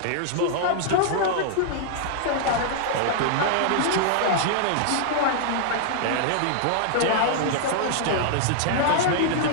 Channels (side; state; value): both; different; correlation -0.01